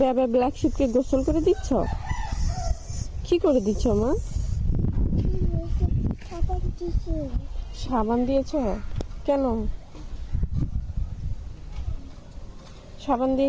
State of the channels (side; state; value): both; identical; correlation 1.00